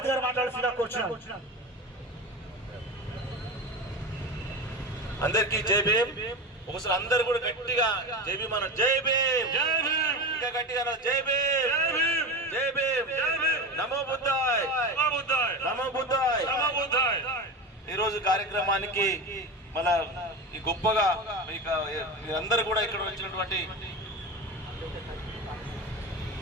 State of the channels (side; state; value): both; normal; correlation 0.25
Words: గారు మాట్లాడుతున్నా కూర్చున్నాను. అందరికి జై భీమ్. ఒకసారి అందరు కూడా గట్టిగా జై భీమ్ అన్నారు. జై భీమ్, ఇంకా గట్టిగా అన్నారు. జై భీమ్, జై భీమ్, నమో బుద్ధాయ్, నమో బుద్ధాయ్. ఈరోజు కార్యక్రమానికి మన ఈ గొప్పగా మీరందరూ కూడా ఇక్కడ వచ్చినటువంటి